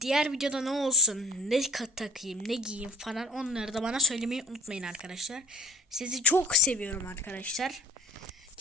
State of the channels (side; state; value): both; normal; correlation 0.46